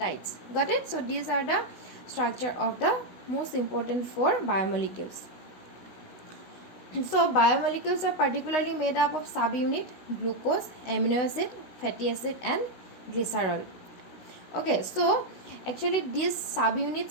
Got it? So these are the structure of the most important four biomolecules. So biomolecules are particularly made up of subunit glucose, amino acid, fatty acid and glycerol. Okay, so actually these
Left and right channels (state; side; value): late; right; 16 ms